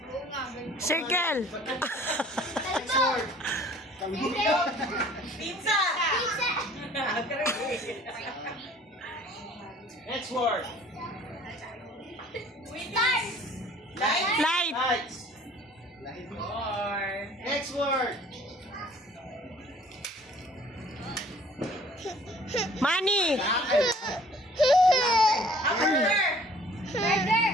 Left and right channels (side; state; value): both; normal; correlation 0.53